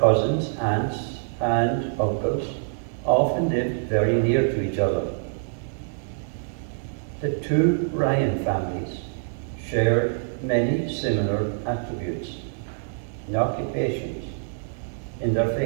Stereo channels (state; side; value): silent; left; digital silence